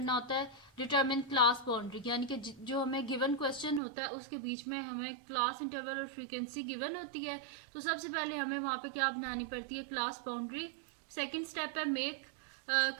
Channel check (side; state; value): left; drops out; at 3.8 s